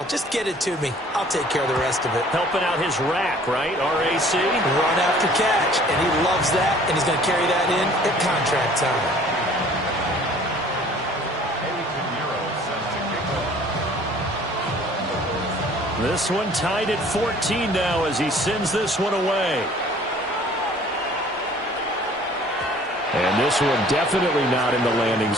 Just get it to me. I'll take care of the rest of it. Helping out his rack, right? RAC. Run after catch. And he loves that, and he's going to carry that in at contract time. This one tied at 14 now as he sends this one away. And this one definitely not in the landing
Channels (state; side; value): normal; both; correlation 0.52